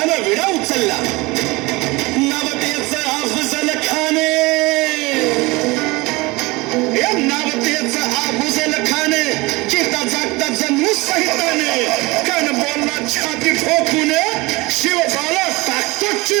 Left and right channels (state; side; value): quieter; left; 23.1 dB